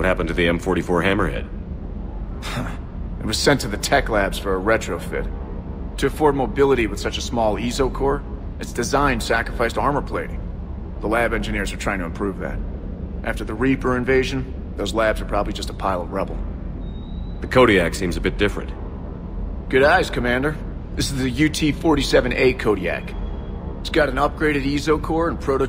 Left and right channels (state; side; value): identical; both; correlation 1.00